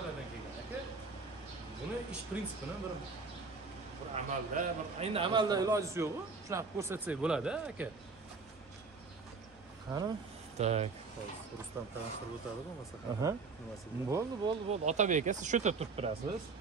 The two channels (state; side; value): quieter; left; 4.5 dB